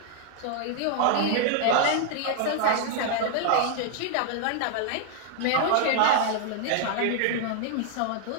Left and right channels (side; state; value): both; different; correlation 0.00